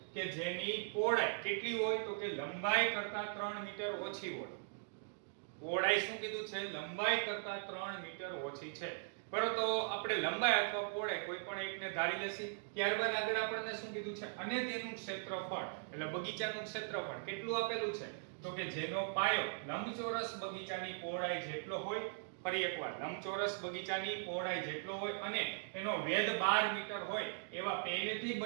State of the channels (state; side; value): silent; left; digital silence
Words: કે જેની પહોળાઈ કેટલી હોય તો કે લંબાઈ કરતા 3 મીટર ઓછી હોય. પહોળાઈ શું કીધું છે? લંબાઈ કરતા 3 મીટર ઓછી છે. બરોબર, તો આપણે લંબાઈ અથવા પહોળાઈ કોઈ પણ એકને ધારી લેશી. ત્યારબાદ આગળ આપણને શું કીધું છે? અને તેનું ક્ષેત્રફળ એટલે બગીચાનું ક્ષેત્રફળ કેટલું આપેલું છે તો કે જેનો પાયો લંબચોરસ બગીચાની પહોળાઈ જેટલો હોય. ફરી એકવાર, લંબચોરસ બગીચાની પહોળાઈ જેટલો હોય અને એનો વેધ 12 મીટર હોય એવા પહેલેથી